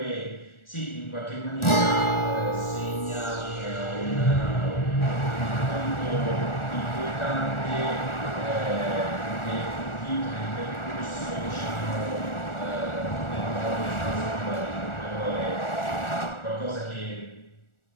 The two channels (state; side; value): late; right; 1.4 ms